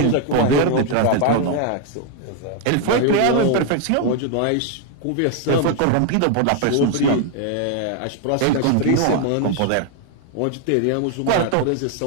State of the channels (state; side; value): different; both; correlation 0.01